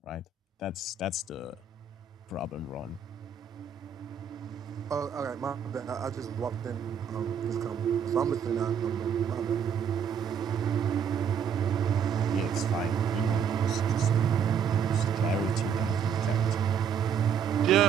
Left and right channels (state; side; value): quieter; left; 7.1 dB